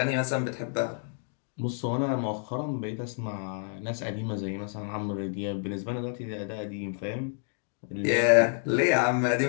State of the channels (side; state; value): right; silent; 59 dB below the other